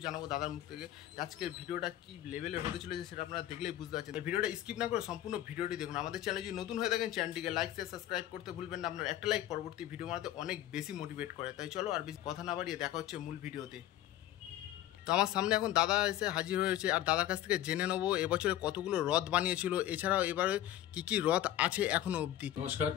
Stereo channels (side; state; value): right; quieter; 13.2 dB